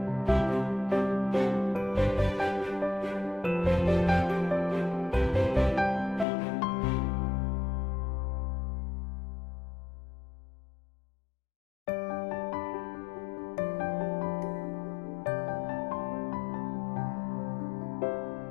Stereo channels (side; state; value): right; drops out; at 6.2 s